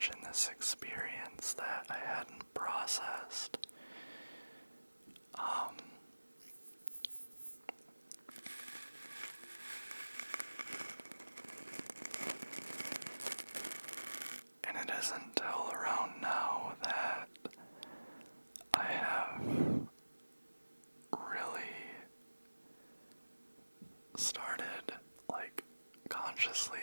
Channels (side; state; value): both; inverted; correlation -1.00